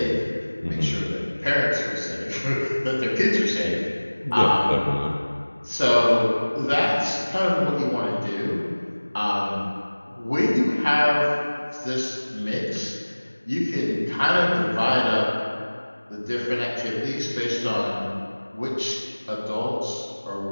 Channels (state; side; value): inverted; both; correlation -1.00